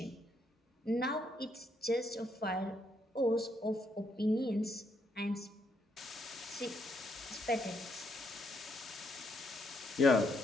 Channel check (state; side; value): normal; both; correlation 0.75